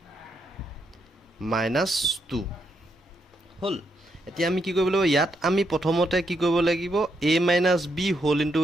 minus 2 হল এতিয়া আমি কি কৰিব লাগিব ইয়াত আমি প্ৰথমতে কি কৰিব লাগিব a minus b whole into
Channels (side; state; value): both; normal; correlation 0.79